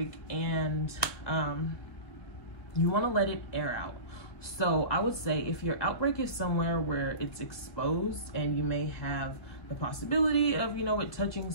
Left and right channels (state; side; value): late; right; 1.9 ms